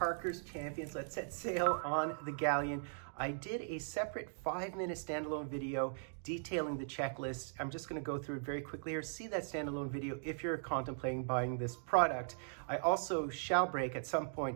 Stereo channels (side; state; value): left; silent; digital silence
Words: Champions. Let's set sail on the galleon. I did a separate 5-minute standalone video detailing the checklist. I'm just going to go through it very quickly here. See that standalone video if you're contemplating buying this product. I also shall break at some